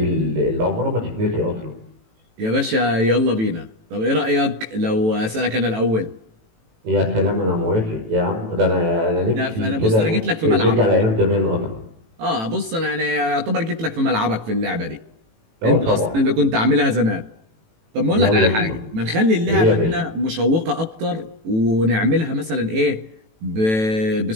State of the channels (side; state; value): left; late; 18 ms